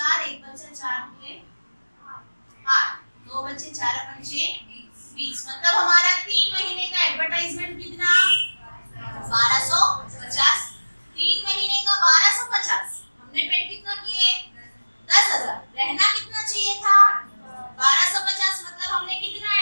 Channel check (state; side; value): inverted; both; correlation -1.00